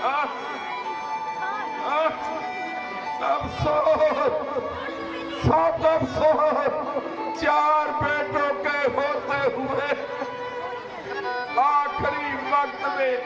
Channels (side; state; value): both; identical; correlation 1.00